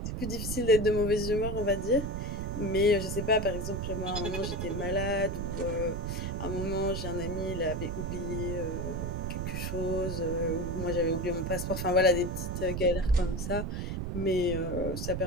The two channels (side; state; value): right; noise; rumble, 3 dB below the sound